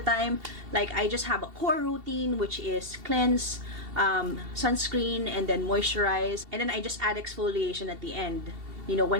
Like, I just have a core routine, which is cleanse, sunscreen, and then moisturize. And then I just add exfoliation at the end, you know,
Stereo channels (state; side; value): late; left; 2.7 ms